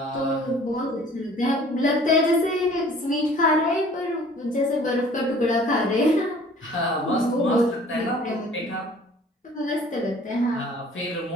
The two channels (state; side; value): normal; both; correlation 0.51